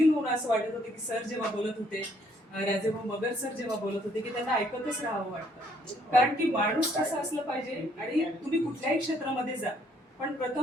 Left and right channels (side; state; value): both; normal; correlation 0.67